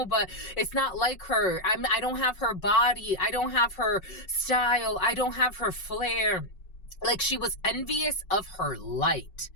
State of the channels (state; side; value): late; right; 5.4 ms